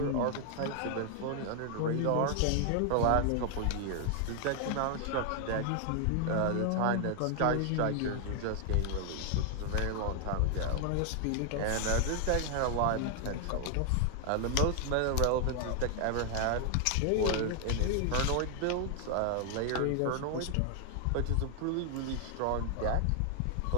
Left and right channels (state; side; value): different; both; correlation 0.00